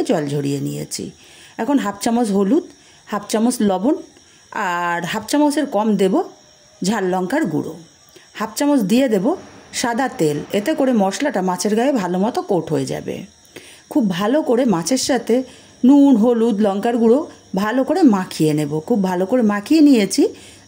জল ঝরিয়ে নিয়েছি। এখন হাফ চামচ হলুদ, হাফ চামচ লবণ আর হাফ চামচের কম দেব ঝাল লঙ্কার গুঁড়ো, হাফ চামচ দিয়ে দেব সাদা তেল। এতে করে মশলাটা মাছের গায়ে ভালো মতো কোট হয়ে যাবে। খুব ভালো করে মাছের সাথে নুন, হলুদ, লঙ্কার গুঁড়ো ভালো করে মাখিয়ে নেব। খুব ভালো করে মাখিয়ে নিয়েছি।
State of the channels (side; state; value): both; identical; correlation 1.00